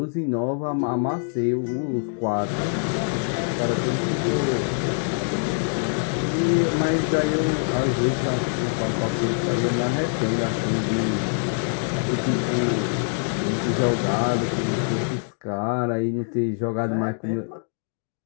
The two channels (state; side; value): silent; right; digital silence